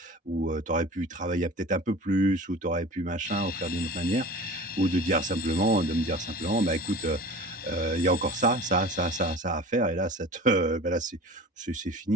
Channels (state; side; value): normal; both; correlation 0.38